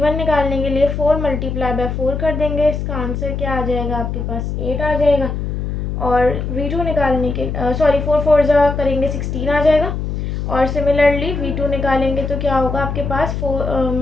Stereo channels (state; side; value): noise; left; hum, 3 dB below the sound